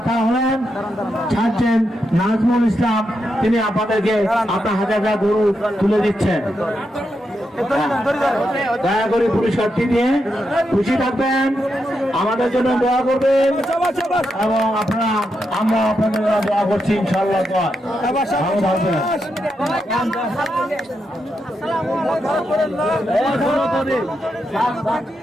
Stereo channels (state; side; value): normal; both; correlation 0.84